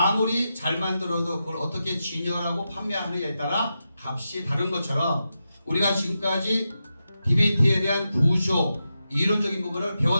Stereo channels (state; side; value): inverted; both; correlation -0.89